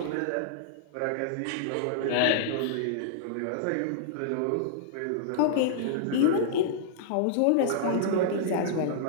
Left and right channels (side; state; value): both; different; correlation -0.01